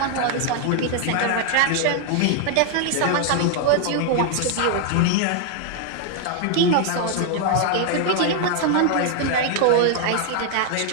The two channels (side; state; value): both; different; correlation 0.00